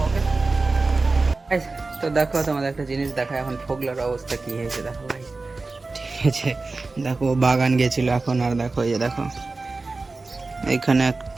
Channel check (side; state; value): left; quieter; 3.6 dB